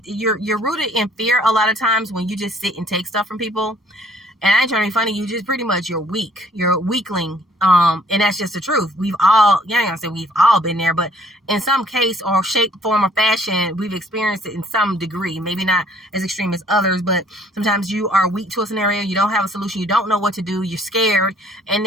you're rooted in fear a lot of times when you just sit and take stuff from people. And I ain't trying to be funny, you just pretty much, you're weak. You're a weakling. And that's just the truth. We've all, I ain't gonna say we've all been there, but in some case or shape, form, or fashion, we've experienced it in some degree. Maybe not as extreme as others, but sometimes you are weak to a scenario. You don't have a solution. You don't know what to do. You're scared. And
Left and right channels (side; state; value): both; normal; correlation 0.60